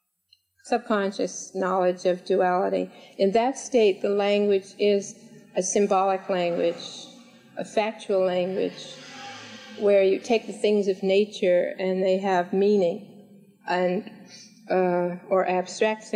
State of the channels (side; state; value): both; identical; correlation 1.00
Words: subconscious knowledge of duality. In that state, the language is a symbolic language, a factual language, where you take the things of nature and they have meaning, and or abstract